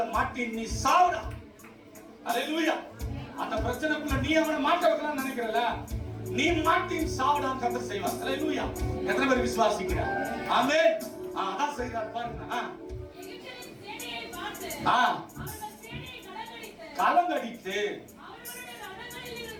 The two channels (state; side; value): identical; both; correlation 1.00